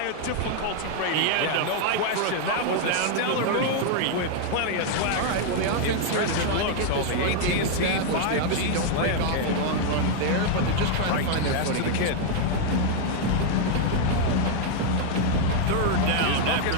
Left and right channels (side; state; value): both; different; correlation 0.00